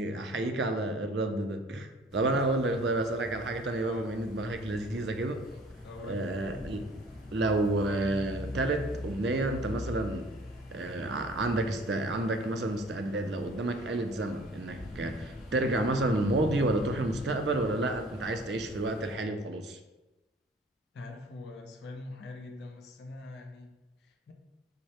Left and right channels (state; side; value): normal; both; correlation 0.52